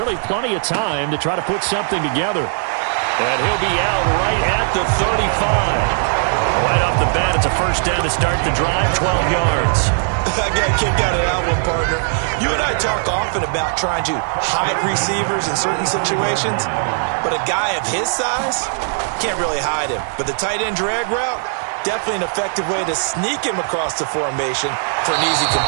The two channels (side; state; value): left; silent; digital silence